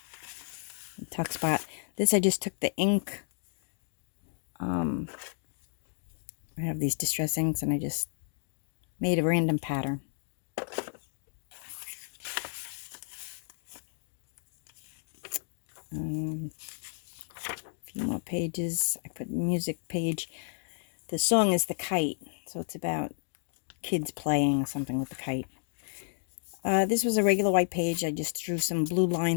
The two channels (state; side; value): silent; right; digital silence